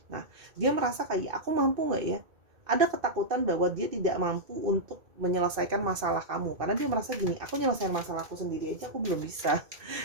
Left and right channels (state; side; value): late; left; 2.6 ms